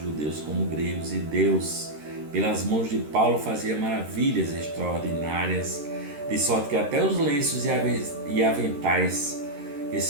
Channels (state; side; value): late; left; 13 ms